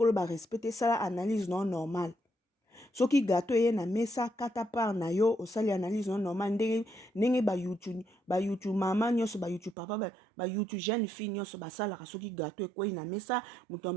ba respecter sala analyse non normal. Soki gâteau ye na mesa kata par na yo osali analyse non normal ndenge ba YouTube mama nyoso ba YouTube papa ba YouTube jeune fille nyoso basala soki gâteau ekwei na mesa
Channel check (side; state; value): left; drops out; at 9.8 s